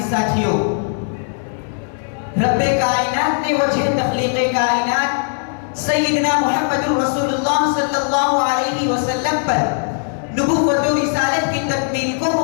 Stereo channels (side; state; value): right; silent; 67 dB below the other